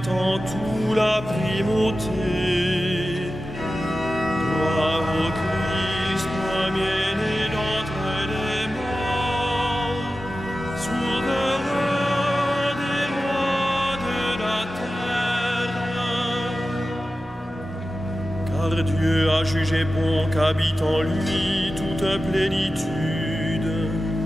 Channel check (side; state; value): both; normal; correlation 0.94